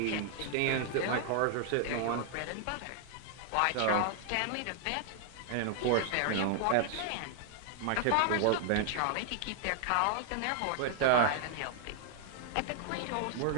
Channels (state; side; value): different; both; correlation 0.00